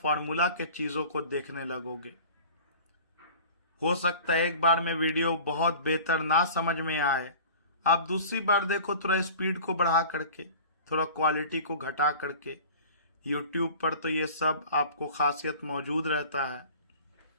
फॉर्मूला के चीजों को देखने लगोगे। हो सकता है एक बार में वीडियो बहुत बेहतर ना समझ में आए, आप दूसरी बार देखो थोड़ा स्पीड को बढ़ा करके, थोड़ा क्वालिटी को घटा करके। YouTube पर तो ये सब आपको खासियत मौजूद रहता है।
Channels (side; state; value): both; inverted; correlation -0.42